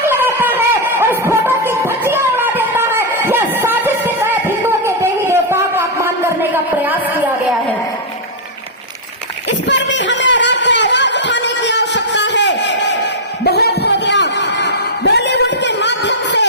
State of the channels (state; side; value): normal; both; correlation -0.05